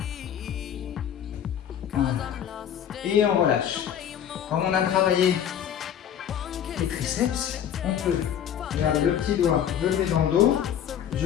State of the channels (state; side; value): quieter; right; 9.4 dB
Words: Voilà. Et on relâche. Comme on a travaillé les triceps, on peut garder le petit doigt, je le mets dans le dos,